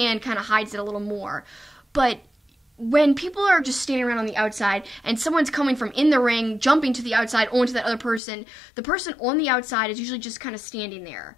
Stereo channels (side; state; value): right; drops out; at 8.2 s